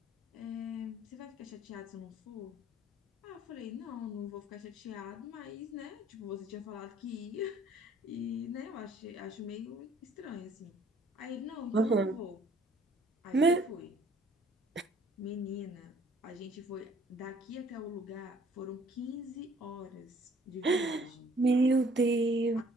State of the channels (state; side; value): normal; both; correlation 0.58